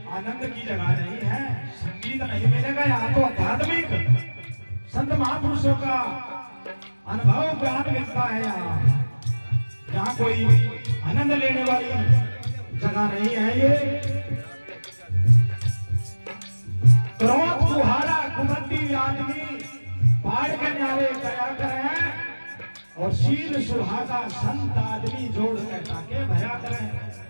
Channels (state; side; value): inverted; both; correlation -1.00